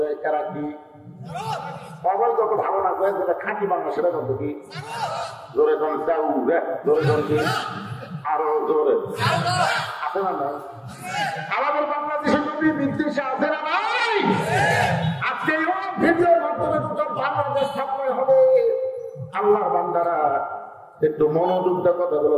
এরা কি অবৈধ? তো ভালো না করে যেটা খাঁটি বাংলা সেটা বলতো কি? জোরে জন চাউ জোরে জন কি আরো জোরে আছে না নাই? আমাদের বাংলাদেশের নবী বিদ্বেষে আছে না নাই? আজকে ভিডিওর মাধ্যমে দুটো বাংলাদেশ স্থাপন হবে। আল্লাহর বান্দারা একটু মনোযোগ দিয়ে কথাগুলো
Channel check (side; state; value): both; identical; correlation 1.00